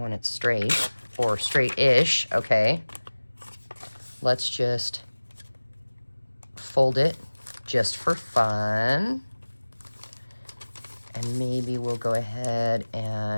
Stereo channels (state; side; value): inverted; both; correlation -1.00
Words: it straight, or straight-ish, okay. Let's just fold it just for fun. And maybe we'll go ahead